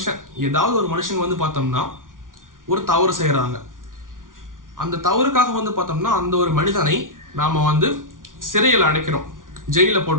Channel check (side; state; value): left; late; 0.89 ms